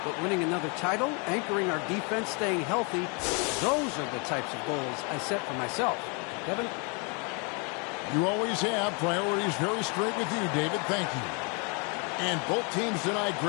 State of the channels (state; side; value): quieter; right; 34.0 dB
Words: But winning another title, anchoring our defense, staying healthy, those are the types of goals I set for myself. Kevin? You always have priorities very straight with you, David. Thank you. And both teams tonight,